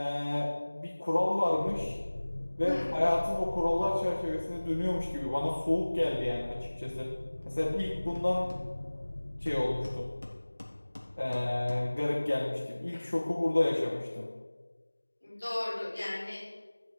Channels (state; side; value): inverted; both; correlation -1.00